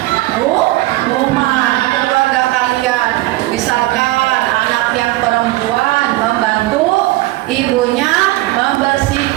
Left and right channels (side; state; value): left; quieter; 18.5 dB